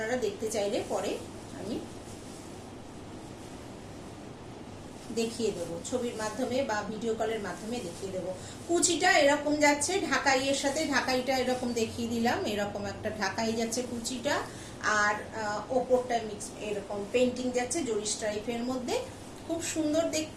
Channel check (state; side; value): identical; both; correlation 1.00